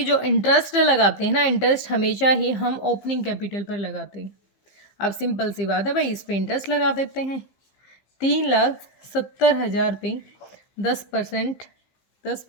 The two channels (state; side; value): late; right; 15 ms